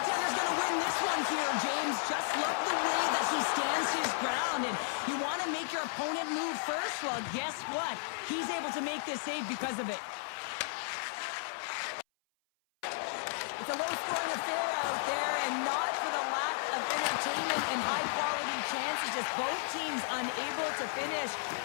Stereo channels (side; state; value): right; silent; 55 dB below the other